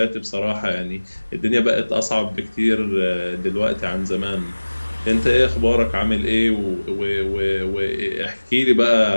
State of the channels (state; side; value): inverted; both; correlation -1.00